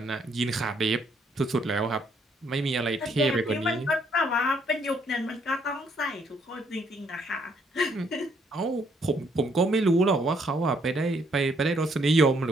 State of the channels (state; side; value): normal; both; correlation 0.69